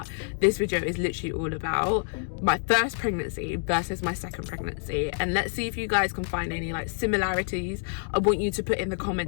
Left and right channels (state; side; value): silent; right; digital silence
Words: this video is literally all about my first pregnancy versus my second pregnancy, and let's see if you guys can find any like similarities. I want you to put in the